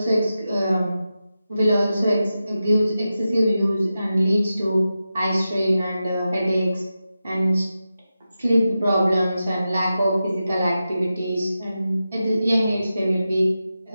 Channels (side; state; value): both; inverted; correlation -0.91